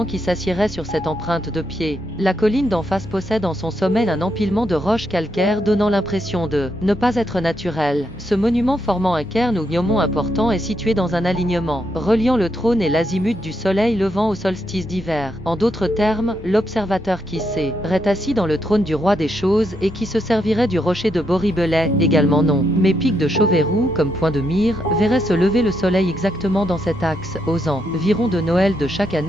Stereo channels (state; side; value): normal; both; correlation 0.80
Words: qui s'assiérait sur cette empreinte de pied. La colline d'en face possède en son sommet un empilement de roches calcaires donnant l'impression de ne pas être naturel. Ce monument formant un cairn ou gnomon important est situé dans un alignement reliant le trône et l'azimut du soleil levant au solstice d'hiver. En d'autres termes, l'observateur qui serait assis dans le trône du roi des choses et qui se servirait du rocher de Boribelais, également non, mais pic de Chauverou comme point de mire, verrait se lever le soleil exactement dans cet axe, aux environs de Noël de chaque